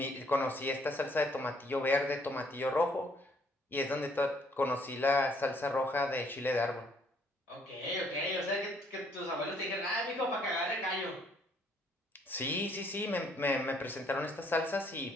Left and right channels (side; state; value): both; normal; correlation 0.65